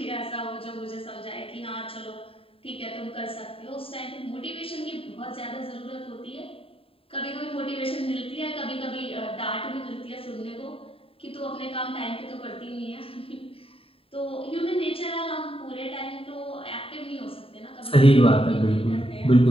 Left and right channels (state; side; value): late; right; 0.27 ms